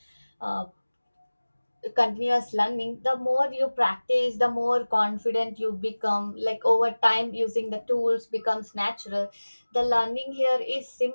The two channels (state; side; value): inverted; both; correlation -1.00